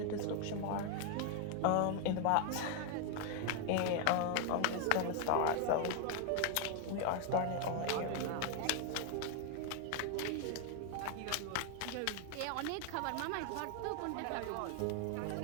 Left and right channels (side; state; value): both; different; correlation 0.00